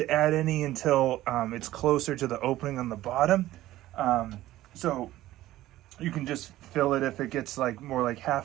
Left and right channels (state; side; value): quieter; left; 15.3 dB